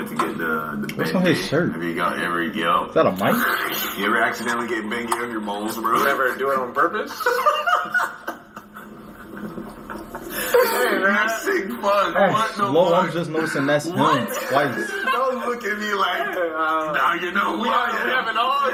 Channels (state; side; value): identical; both; correlation 1.00